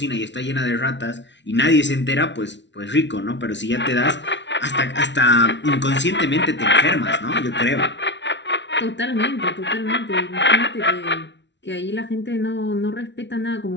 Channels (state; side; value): late; right; 0.52 ms